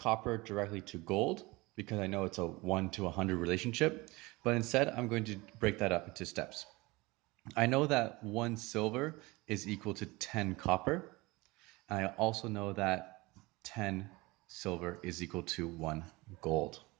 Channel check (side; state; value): left; quieter; 22.7 dB